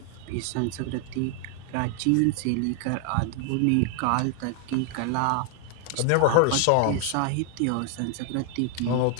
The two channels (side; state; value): both; different; correlation 0.00